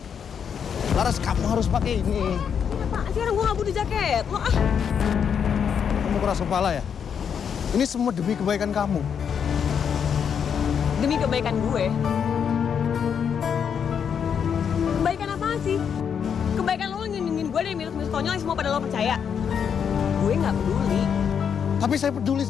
kamu harus pakai ini. Apaan sih orang gue gak butuh jaket? Lo ah. Kamu keras kepala ya? Ini semua demi kebaikan kamu. Demi kebaikan gue. Kebaikan apaan sih? Kebaikan lo ngelindungin gue dari minus-minus konyol yang semua pada lo percaya. Gue gak peduli. Tapi saya peduli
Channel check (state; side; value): quieter; right; 7.5 dB